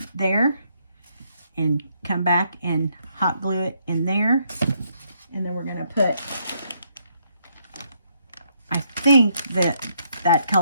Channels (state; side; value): inverted; both; correlation -0.73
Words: there and come back and hot glue it in there. And then we're going to put, I think that